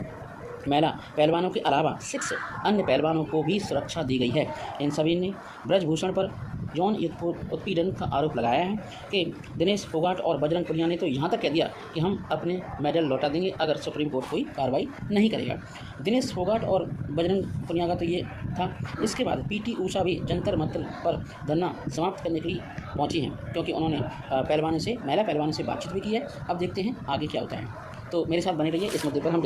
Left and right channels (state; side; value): identical; both; correlation 1.00